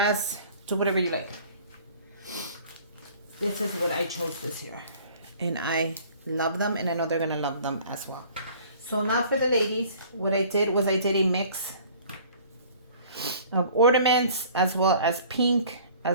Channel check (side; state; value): both; inverted; correlation -0.51